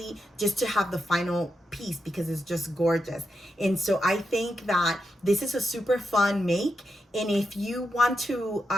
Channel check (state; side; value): normal; both; correlation 0.86